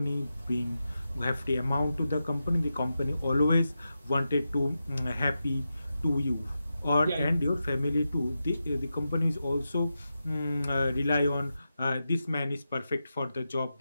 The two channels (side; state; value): both; inverted; correlation -0.90